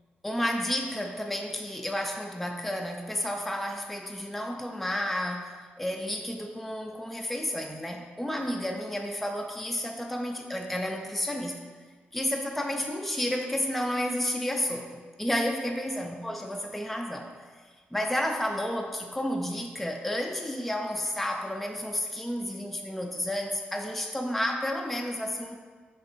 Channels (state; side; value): normal; both; correlation 0.86